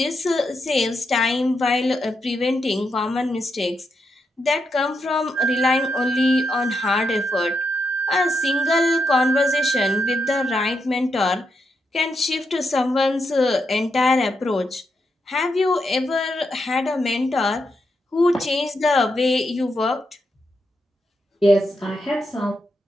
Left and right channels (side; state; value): both; normal; correlation 0.82